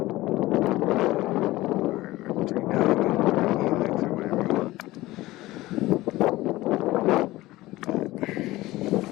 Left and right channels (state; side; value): quieter; right; 18.2 dB